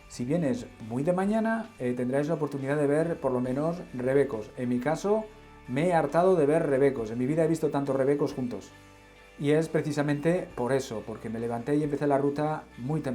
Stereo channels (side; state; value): both; identical; correlation 1.00